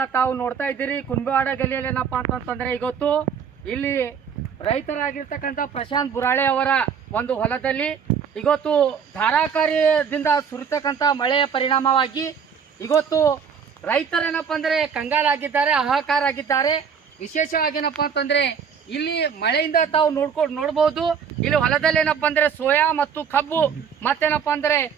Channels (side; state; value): left; quieter; 6.9 dB